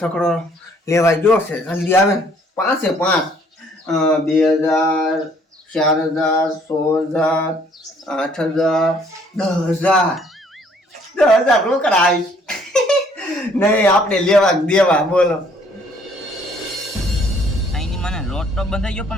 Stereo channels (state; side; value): normal; both; correlation 0.62